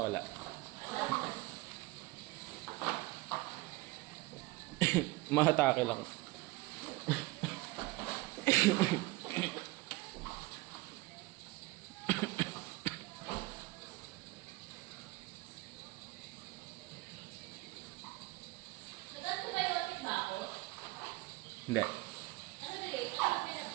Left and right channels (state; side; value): quieter; left; 21.5 dB